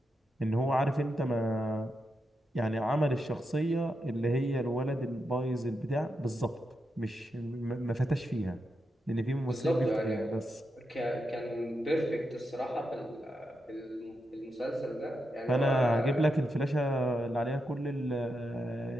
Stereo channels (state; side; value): normal; both; correlation 0.86